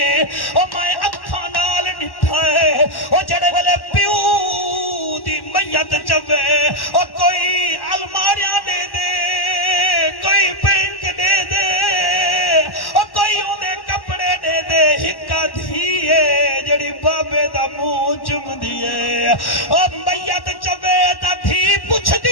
اور میں اکھا نال نٹھائے اور جڑے والے پیو دی میت چوے اور کوئی الماریاں دے دے کوئی پینک دے دے اور کوئی اندے کپڑے دے دے ہکا دھیے جڑی بابے دا منہ چم دیے اور میت چوے دا دھی پوچھ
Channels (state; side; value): late; right; 1.1 ms